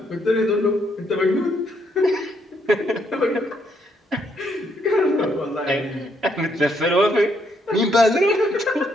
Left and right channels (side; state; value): both; normal; correlation 0.73